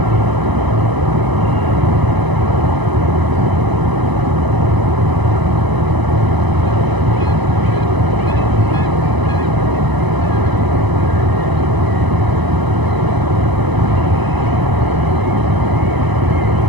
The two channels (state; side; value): late; left; 1.0 ms